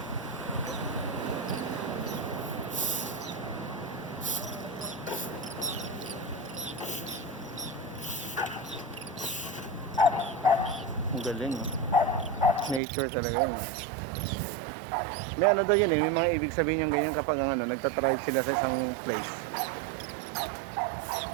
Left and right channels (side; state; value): left; drops out; at 12.8 s